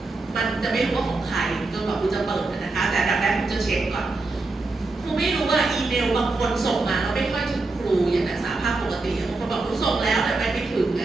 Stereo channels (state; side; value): quieter; left; 3.4 dB